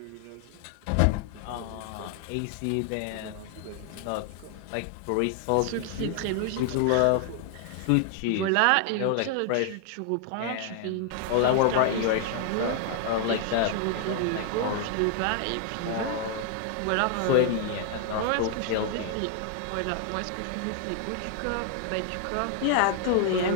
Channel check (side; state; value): both; different; correlation 0.00